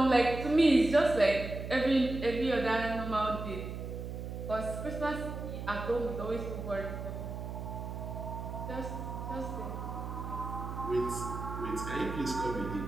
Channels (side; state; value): right; noise; hum, 7 dB below the sound